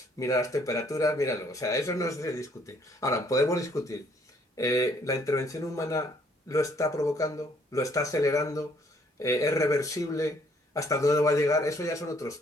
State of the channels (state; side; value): normal; both; correlation 0.64